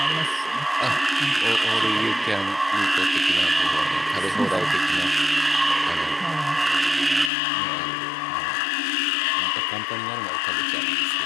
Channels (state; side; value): drops out; right; at 7.3 s